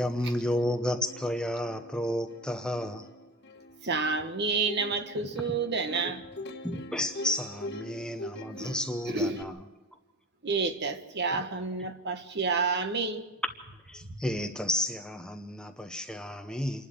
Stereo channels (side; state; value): both; normal; correlation 0.30